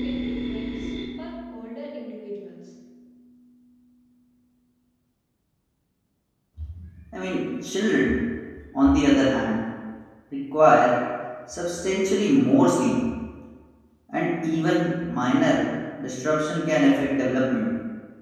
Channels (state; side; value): identical; both; correlation 1.00